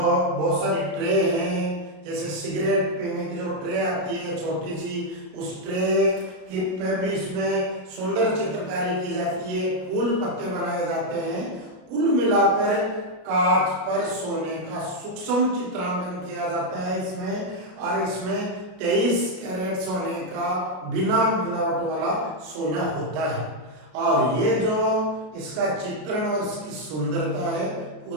सारी ट्रे हैं, जैसे सिगरेट पीने की जो ट्रे आती है छोटी सी, उस ट्रे की पे भी इसमें सुंदर चित्रकारी की जाती है, फूल पत्ते बनाए जाते हैं। कुल मिलाकर कांच पर सोने का सूक्ष्म चित्रांकन किया जाता है इसमें, और इसमें 23 कैरेट सोने का बिना मिलावट वाला सोना होता है। और ये जो इसका चित्रण और इसकी सुंदरता है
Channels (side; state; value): left; late; 33 ms